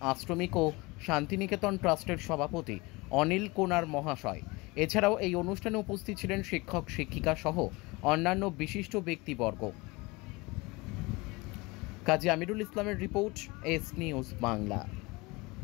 আশ্রমিক ও শান্তিনিকেতন ট্রাস্টের সভাপতি অনিল কোনার মহাশয়। এছাড়াও এই অনুষ্ঠানে উপস্থিত ছিলেন শিক্ষক, শিক্ষিকা সহ অন্যান্য বিশিষ্ট ব্যক্তিবর্গ। কাজী আমিরুল ইসলামের রিপোর্ট, এস নিউজ বাংলা।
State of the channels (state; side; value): quieter; right; 24.1 dB